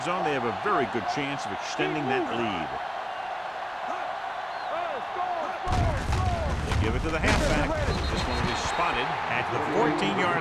zone, they have a very good chance of extending that lead. They give it to the halfback. This one is spotted at the 14-yard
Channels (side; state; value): both; identical; correlation 1.00